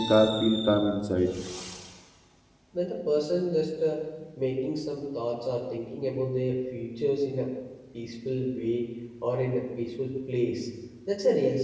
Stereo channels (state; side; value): identical; both; correlation 1.00